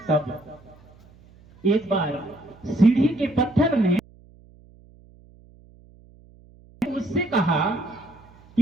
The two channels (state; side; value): noise; right; hum, 26 dB below the sound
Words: तब एक बार सीढ़ी के पत्थर ने उससे कहा